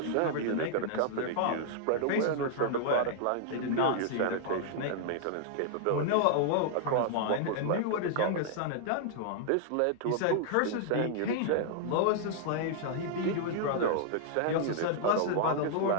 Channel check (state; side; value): different; both; correlation -0.01